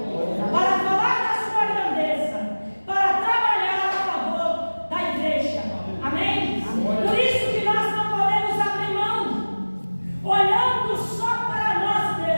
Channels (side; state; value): both; inverted; correlation -1.00